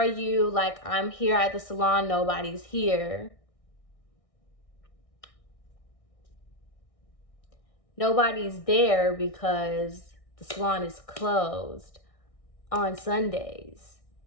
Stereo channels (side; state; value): right; late; 1.6 ms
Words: you? Like, I'm here at the salon. Nobody's here. Nobody's there because the salon is closed on Sundays.